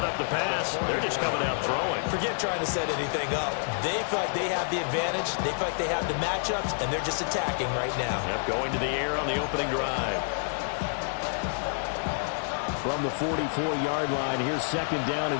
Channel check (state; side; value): silent; right; digital silence